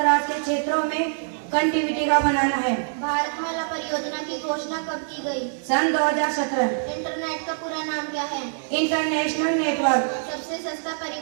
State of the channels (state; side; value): silent; left; digital silence